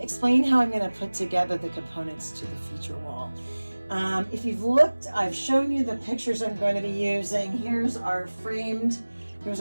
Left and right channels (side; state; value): both; inverted; correlation -1.00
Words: how I'm going to put together the components to the feature wall. If you've looked, I've shown you the pictures I'm going to be using. Here's our